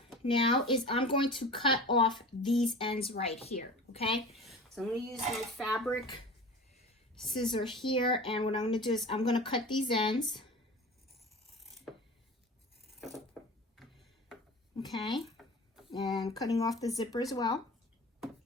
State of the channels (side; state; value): both; normal; correlation 0.37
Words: now is I'm going to cut off these ends right here, okay? So I'm going to use my fabric scissor here, and what I'm going to do is I'm going to cut these ends. Okay, and cutting off the zipper as well. There